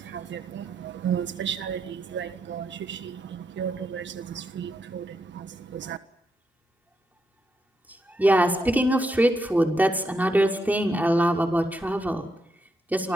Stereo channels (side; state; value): both; normal; correlation 0.81